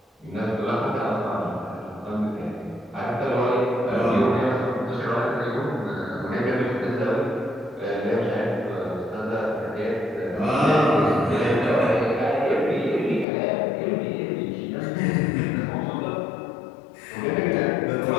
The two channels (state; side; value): drops out; right; at 13.2 s